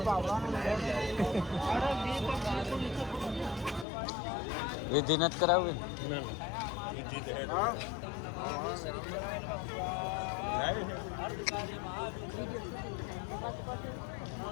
વિધિ નથી કરાવવી. ના ના વિધિ તો હે.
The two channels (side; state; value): right; drops out; at 3.9 s